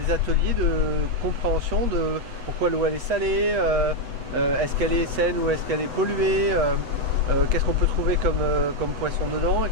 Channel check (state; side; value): late; left; 8.1 ms